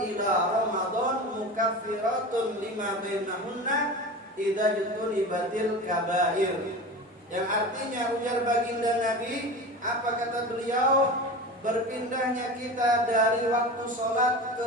ramadan mukaffiratun lima bainahunna idza jutunibatil kabair. Yang artinya, ujar baginda Nabi, apa kata beliau? Berpindahnya kita dari waktu sholat ke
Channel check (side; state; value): both; normal; correlation 0.30